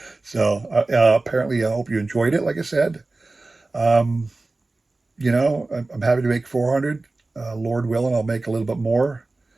So apparently, I hope you enjoyed it. Like I said, um, I'm happy to make 400. Lord willing, I'll make a little bit more.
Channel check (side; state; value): left; quieter; 3.2 dB